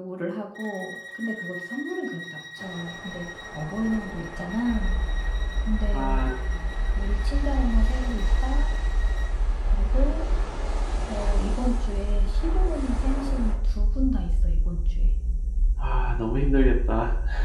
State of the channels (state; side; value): identical; both; correlation 1.00